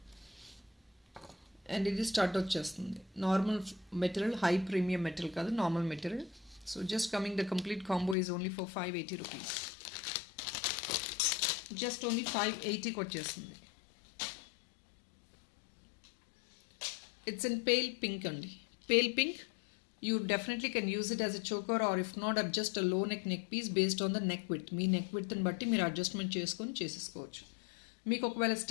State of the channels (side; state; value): right; drops out; at 8.2 s